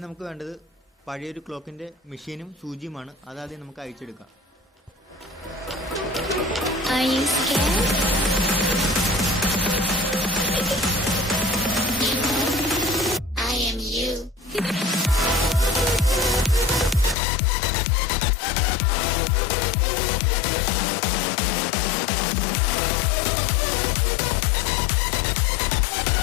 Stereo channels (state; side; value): drops out; right; at 17.2 s